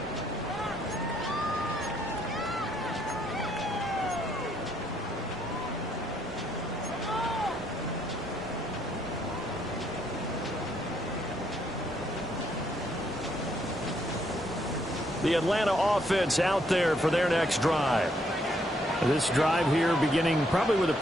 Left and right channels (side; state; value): both; normal; correlation 0.72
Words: The Atlanta offense out there for their next drive. This drive here beginning probably with a